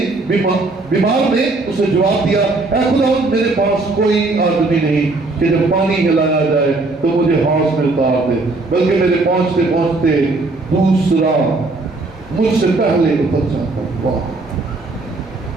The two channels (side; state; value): left; quieter; 3.3 dB